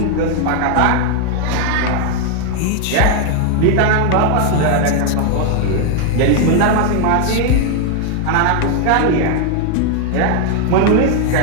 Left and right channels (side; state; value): both; different; correlation 0.00